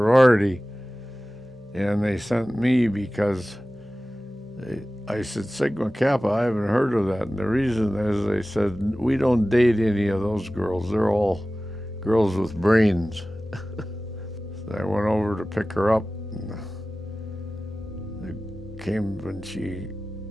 and they sent me because I said, Sigma Kappa, I haven't heard of that. And the reason is they said, we don't date any of those girls. They're all girls with brains. So I went over to pick her up. And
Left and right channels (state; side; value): normal; both; correlation 0.96